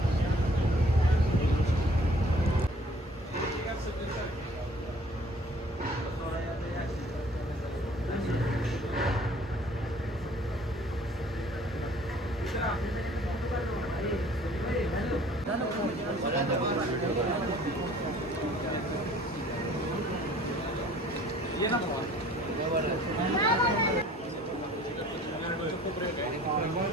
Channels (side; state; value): both; normal; correlation 0.53